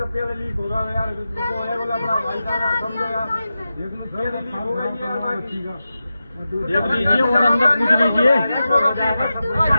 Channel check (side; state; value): both; inverted; correlation -0.92